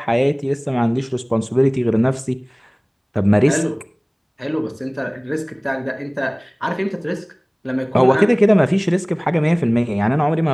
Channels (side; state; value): both; identical; correlation 1.00